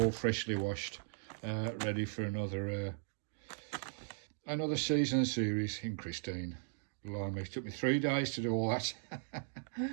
freshly washed, ready for another season series in Christine. Blimey, it took me 3 days to do all that.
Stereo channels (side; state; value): left; silent; digital silence